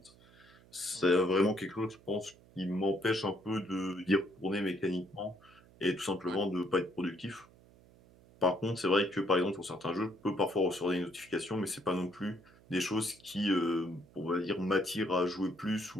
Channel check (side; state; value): right; noise; hum, 26 dB below the sound